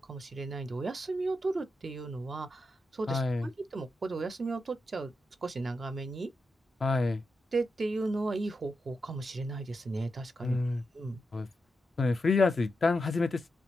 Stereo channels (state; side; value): normal; both; correlation 0.87